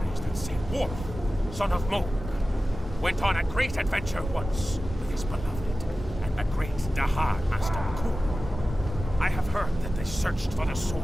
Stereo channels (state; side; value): normal; both; correlation 0.95